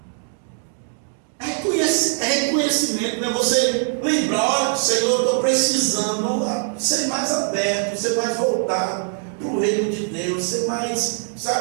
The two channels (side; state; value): left; silent; digital silence